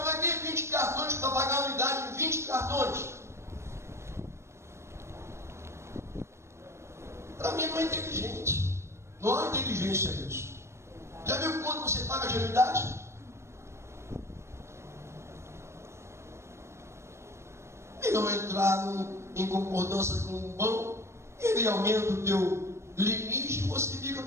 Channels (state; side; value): late; left; 0.13 ms